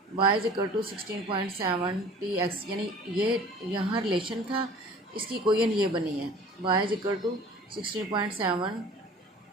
Y is equal to 16.70x, यानी ये यहाँ रिलेशन था, इसकी कोयन ये बनी है Y is equal to 16.70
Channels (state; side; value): normal; both; correlation 0.45